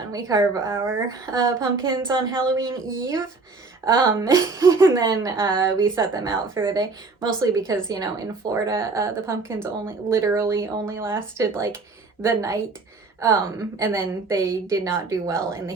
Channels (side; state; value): left; quieter; 3.9 dB